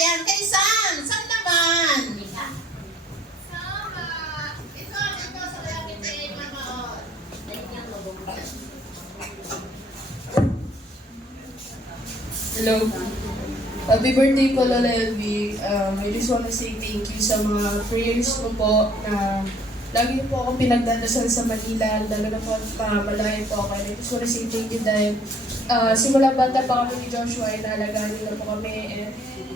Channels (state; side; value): normal; both; correlation 0.59